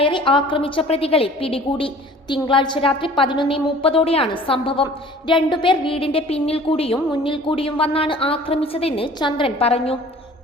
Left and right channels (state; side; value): normal; both; correlation 0.48